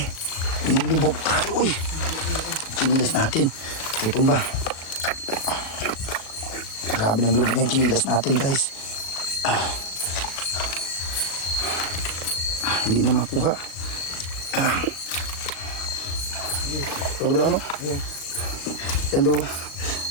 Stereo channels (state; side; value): late; right; 36 ms